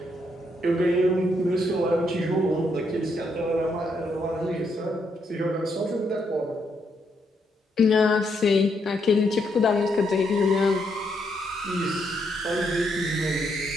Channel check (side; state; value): both; normal; correlation 0.76